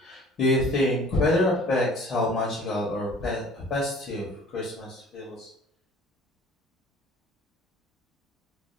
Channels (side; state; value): both; normal; correlation 0.49